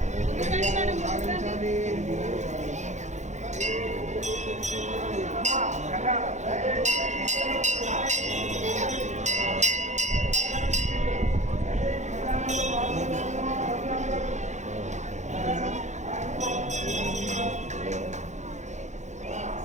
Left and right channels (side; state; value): left; late; 0.34 ms